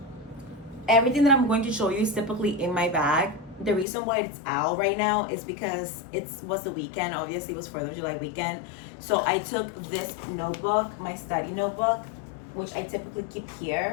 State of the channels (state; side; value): drops out; right; at 3.9 s